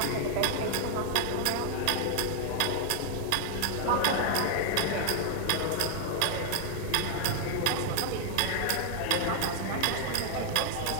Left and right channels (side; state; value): both; different; correlation 0.00